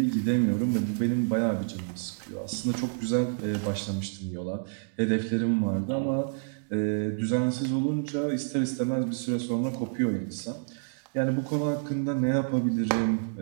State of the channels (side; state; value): left; silent; digital silence